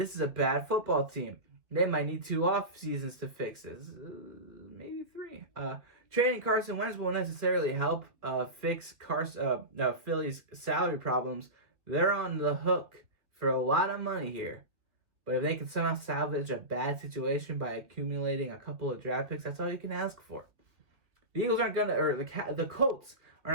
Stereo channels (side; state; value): left; late; 2.7 ms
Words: is a bad football team. They might need 2 off seasons to fix this. Maybe 3. Trading Carson Wentz won't necessarily help fix Philly's salary problems. They're on the hook for a lot of money here. But if they can somehow salvage a bad situation by accumulating a couple of draft picks, that's all you can ask for. The Eagles aren't going to, or the Colts are